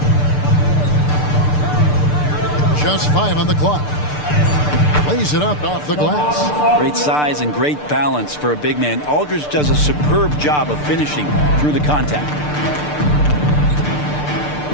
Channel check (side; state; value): right; late; 6.7 ms